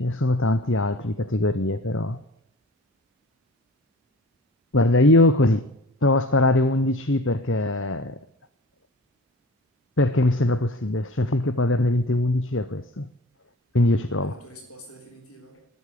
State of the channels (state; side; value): normal; both; correlation 0.43